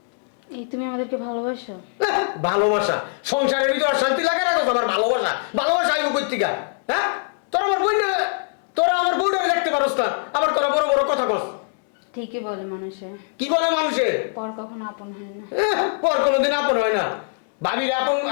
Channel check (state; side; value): silent; right; digital silence